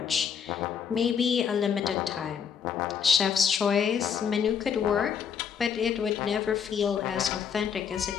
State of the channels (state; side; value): quieter; right; 7.4 dB